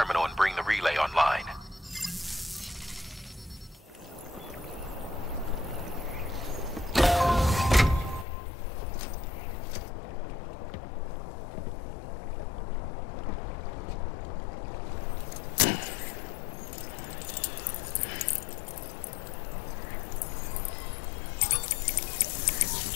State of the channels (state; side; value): drops out; right; at 8.2 s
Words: and bring the relay online.